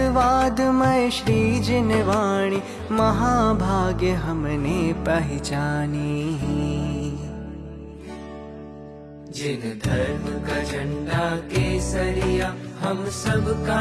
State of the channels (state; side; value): identical; both; correlation 1.00